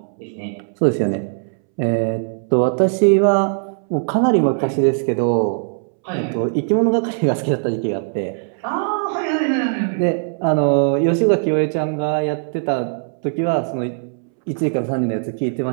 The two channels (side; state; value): left; silent; 66 dB below the other